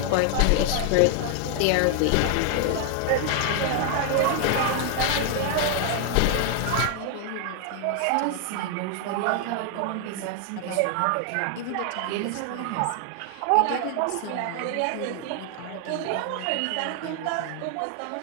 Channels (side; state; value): both; different; correlation 0.00